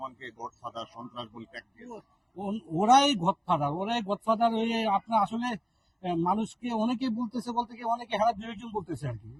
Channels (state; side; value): identical; both; correlation 1.00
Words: গডফাদার, সন্ত্রাস বলে ট্যাগ দিয়েছে। ওরাই গডফাদার হয়ে আপনার আসলে মানুষকে অনেকে বলতেছে, বলতে গিয়ে অনেকে হারা বিয়োজন বলতেছে আর কি।